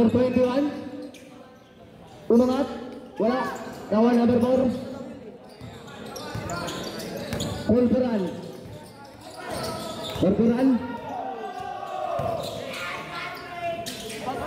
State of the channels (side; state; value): both; identical; correlation 1.00